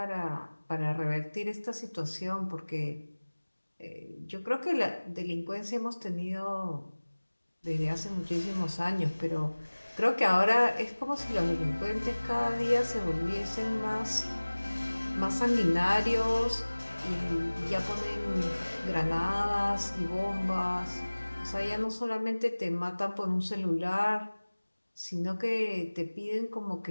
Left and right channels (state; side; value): inverted; both; correlation -1.00